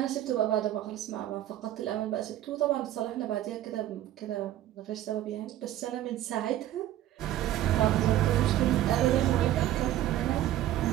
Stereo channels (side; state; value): left; quieter; 13.2 dB